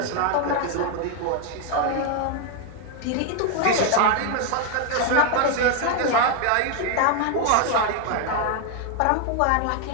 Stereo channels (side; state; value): both; different; correlation 0.01